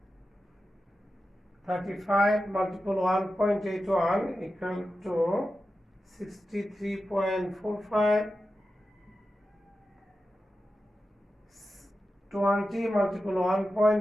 35 multiple 1.81 equal to 63.45. 20 multiple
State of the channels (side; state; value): both; normal; correlation 0.92